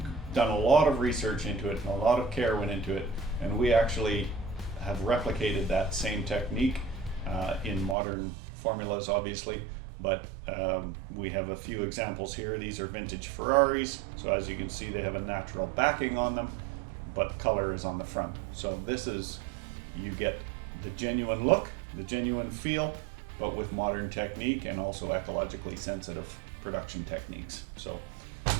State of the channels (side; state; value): left; drops out; at 8.0 s